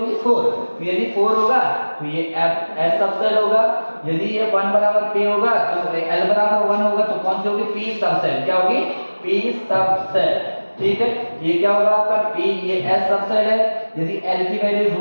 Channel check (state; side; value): inverted; both; correlation -1.00